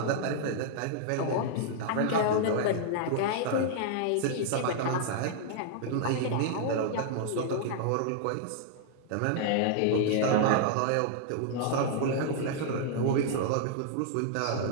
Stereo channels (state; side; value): different; both; correlation -0.01